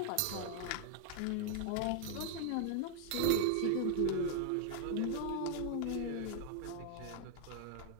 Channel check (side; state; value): both; different; correlation 0.00